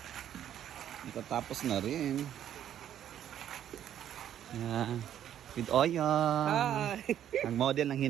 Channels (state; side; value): quieter; left; 10.5 dB